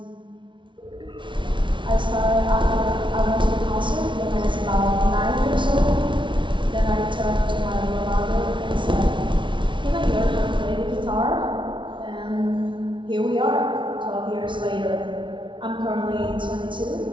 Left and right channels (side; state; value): left; late; 0.24 ms